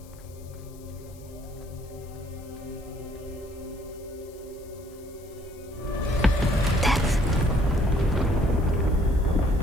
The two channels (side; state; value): left; noise; hiss, 25 dB below the sound